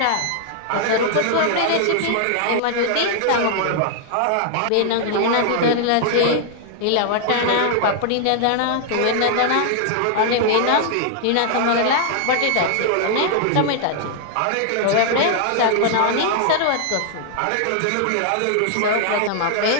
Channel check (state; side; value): different; both; correlation -0.01